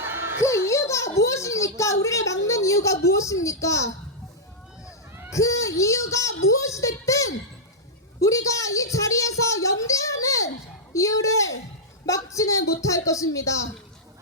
그 이유가 무엇입니까? 우리를 막는 이유가 무엇입니까? 그 이유가 무엇이 됐든 우리가 이 자리에서 연대하는 이유를 막지는 못할 것입니다.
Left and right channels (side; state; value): both; normal; correlation -0.08